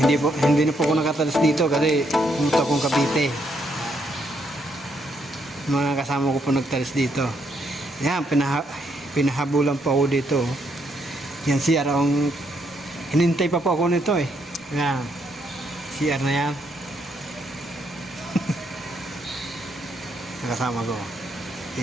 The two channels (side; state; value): both; normal; correlation 0.75